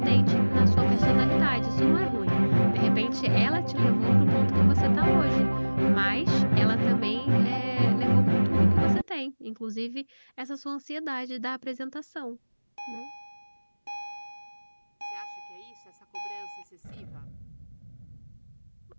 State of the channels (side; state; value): both; inverted; correlation -1.00